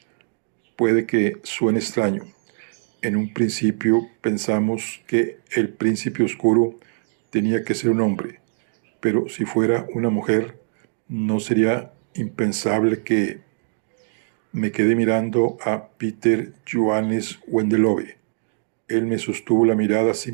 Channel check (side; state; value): left; silent; digital silence